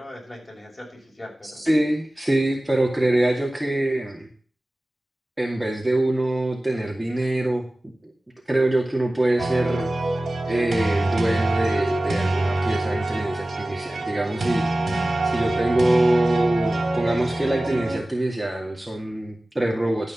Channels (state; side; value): normal; both; correlation 0.97